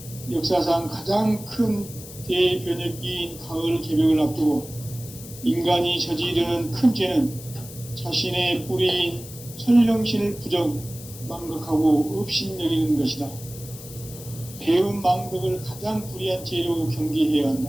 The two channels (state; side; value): noise; left; hiss, 15 dB below the sound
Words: 역사상 가장 큰 대변혁기인 가을 개벽을 앞두고 인간이 저지르는 큰 죄는 자신의 뿌리인 설령신을 부정, 망각하고 업신여기는 것이다. 배음 망덕을 가장 불의한 죄로 경계해야